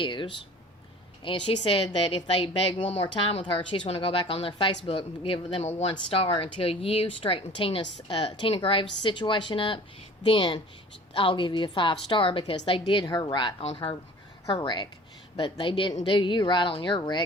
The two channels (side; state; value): both; normal; correlation 0.45